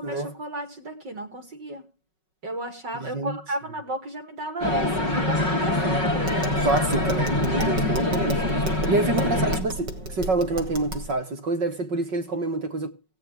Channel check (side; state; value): left; late; 5.4 ms